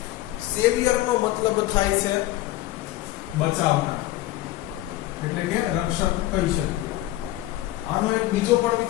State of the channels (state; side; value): quieter; right; 16.1 dB